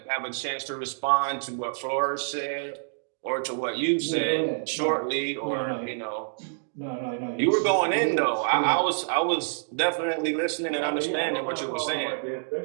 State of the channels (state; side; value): silent; left; digital silence